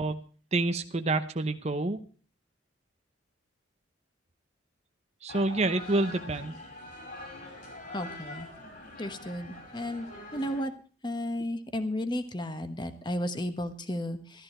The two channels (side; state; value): both; normal; correlation 0.62